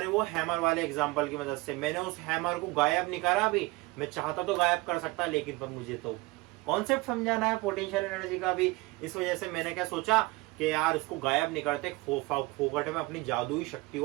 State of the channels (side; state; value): left; quieter; 22.7 dB